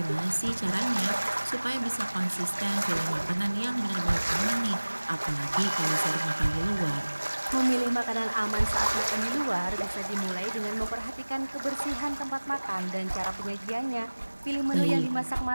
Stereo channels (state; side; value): inverted; both; correlation -1.00